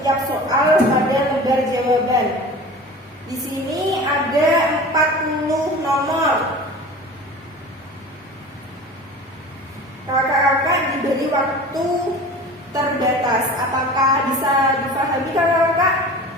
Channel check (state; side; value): normal; both; correlation 0.37